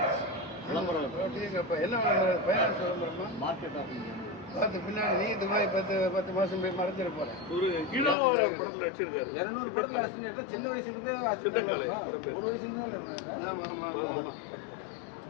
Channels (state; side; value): drops out; right; at 8.2 s